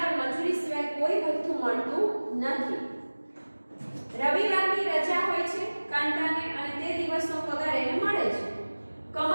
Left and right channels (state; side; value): inverted; both; correlation -1.00